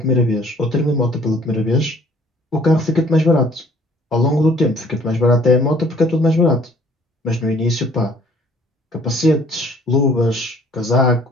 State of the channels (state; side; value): normal; both; correlation 0.57